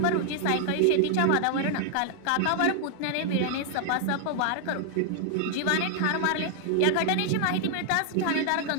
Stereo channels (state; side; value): different; both; correlation 0.00